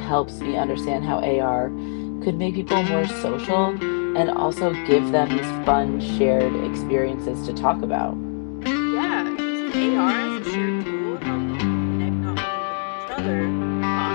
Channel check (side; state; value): right; silent; 64 dB below the other